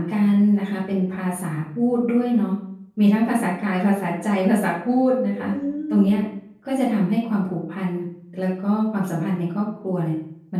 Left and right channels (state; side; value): identical; both; correlation 1.00